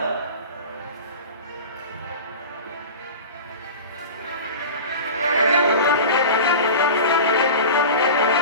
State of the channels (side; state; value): both; inverted; correlation -0.32